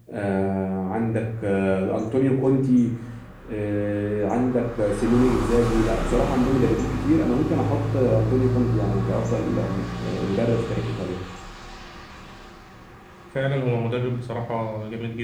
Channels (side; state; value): both; identical; correlation 1.00